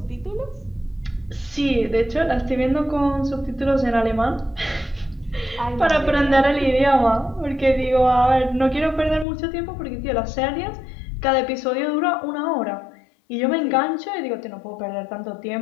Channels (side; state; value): right; drops out; at 9.2 s